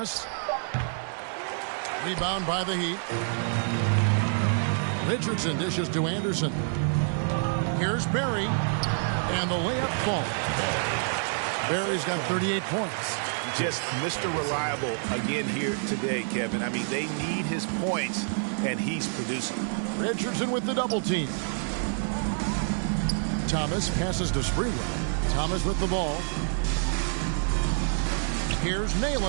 Rebound by the Heat. Richardson dishes to Anderson. Here's Barry. And the layup falls. Barry's got 38 points. Just Mr. Reliable again here today, Kevin. I mean, they need his points, and he's producing. Richardson with the double team. Thomas passes to Sprewell. Thomas with the ball. Here's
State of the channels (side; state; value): left; silent; digital silence